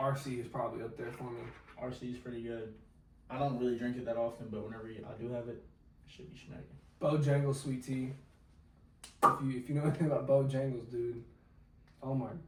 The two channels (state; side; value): identical; both; correlation 1.00